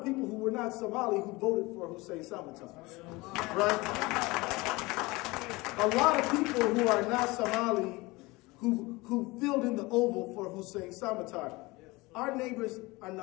people who were not Somali who voted for Hussein Samatar, right? A lot of people who are not Somali who filled in the oval for Hussein Samatar. Our neighbors are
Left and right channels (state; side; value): quieter; right; 22.7 dB